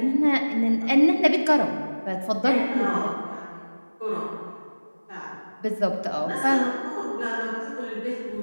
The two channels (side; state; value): both; inverted; correlation -1.00